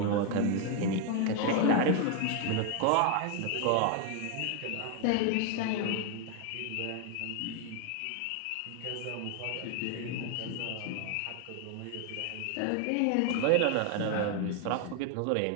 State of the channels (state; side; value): different; both; correlation 0.01